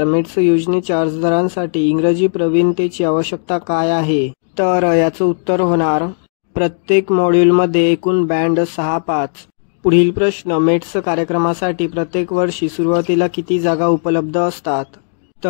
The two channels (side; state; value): right; silent; digital silence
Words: मेट्स योजनेच्या अर्जदारांसाठी इंग्रजी प्रवीणतेची आवश्यकता काय आहे? तर याचं उत्तर होणार प्रत्येक मॉड्यूलमध्ये एकूण बँड 6-5. पुढील प्रश्न मेट्स कार्यक्रमासाठी प्रत्येक वर्षी सुरुवातीला किती जागा उपलब्ध असतात?